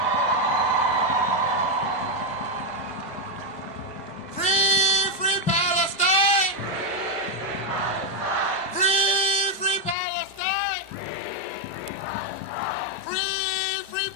Free, free Palestine! Free, free Palestine! Free, free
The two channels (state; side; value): normal; both; correlation 0.04